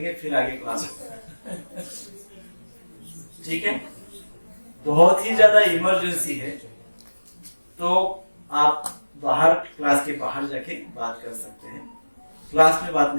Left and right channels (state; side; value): inverted; both; correlation -1.00